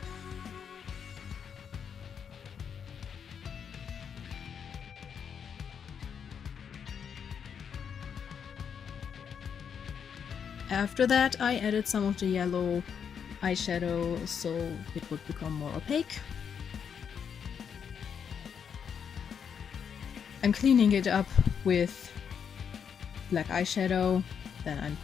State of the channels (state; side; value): quieter; right; 7.3 dB